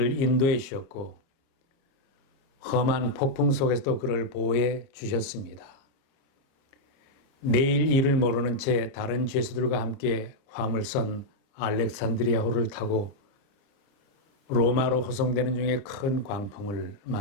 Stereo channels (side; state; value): right; late; 29 ms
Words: 인도해 주셨고 험한 폭풍 속에서도 그를 보호해 주셨습니다. 내일 일을 모르는 채 다른 죄수들과 함께 화물선 알렉산드리아호를 타고 로마로 호송되는 중에 큰 광풍을